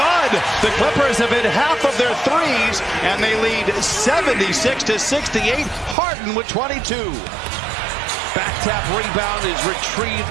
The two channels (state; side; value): drops out; left; at 6.0 s